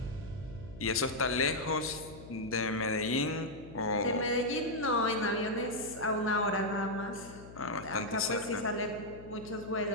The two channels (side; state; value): left; noise; hum, 16 dB below the sound